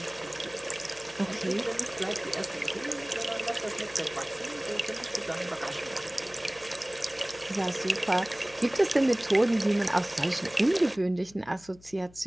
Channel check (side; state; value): left; noise; hum, 24 dB below the sound